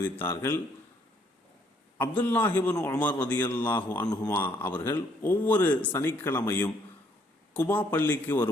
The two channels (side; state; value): both; normal; correlation 0.67